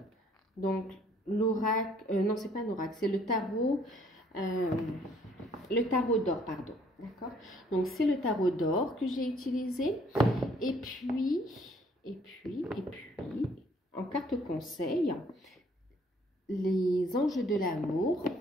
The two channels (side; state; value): both; normal; correlation 0.62